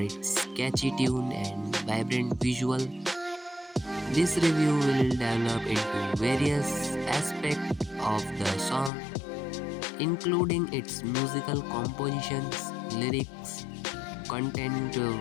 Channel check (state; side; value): drops out; right; at 8.9 s